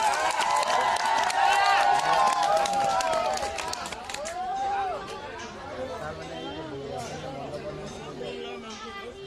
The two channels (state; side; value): identical; both; correlation 1.00